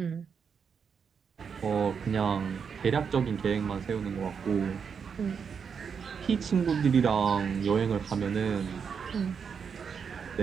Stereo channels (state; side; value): quieter; left; 6.5 dB